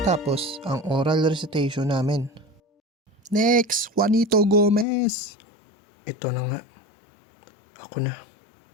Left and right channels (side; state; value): right; drops out; at 4.9 s